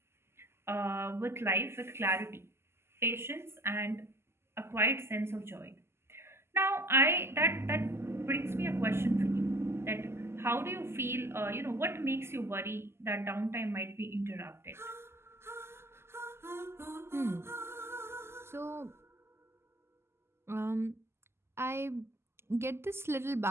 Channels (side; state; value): left; late; 0.12 ms